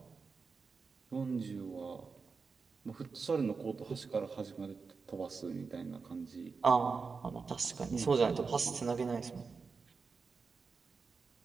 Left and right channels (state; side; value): quieter; left; 4.9 dB